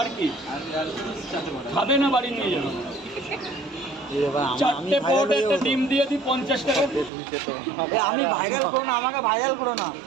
কি খাবে না, বাড়ি নিয়ে যাবে। চারটে পাওয়াটা একটা ডিম দিয়ে দিই 50 টাকা। আমি ভাইরাল করো না, আমাকে ভাইরাল করো না,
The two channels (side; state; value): left; drops out; at 7.1 s